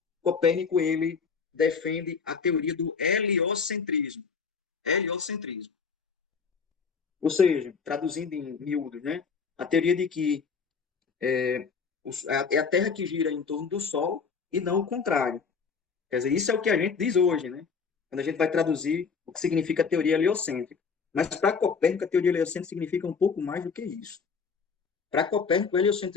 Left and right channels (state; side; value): quieter; right; 5.6 dB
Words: Copérnico ele defende a teoria do heliocentrismo. Heliocentrismo. Ou seja, traduzindo em miúdos, né? A teoria de que é a Terra que gira em torno do Sol e não o contrário. Quer dizer, isso é o que a gente diz hoje, né? Quando a gente vai traduzir o que significa a teoria heliocêntrica. Mas para Copérnico, a teoria heliocêntrica significa um pouco mais do que isso. Para Copérnico, o